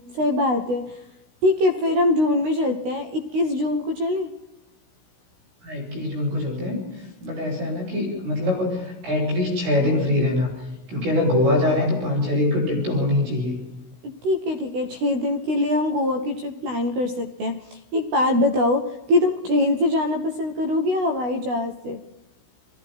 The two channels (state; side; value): late; left; 16 ms